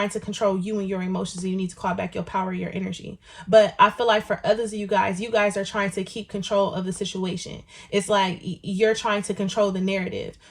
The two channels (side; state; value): both; identical; correlation 1.00